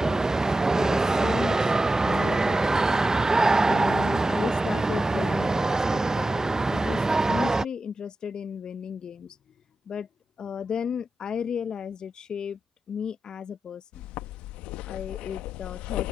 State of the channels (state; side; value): normal; both; correlation 0.92